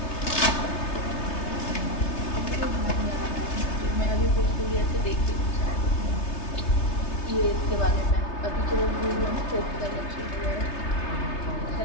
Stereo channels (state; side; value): late; right; 3.3 ms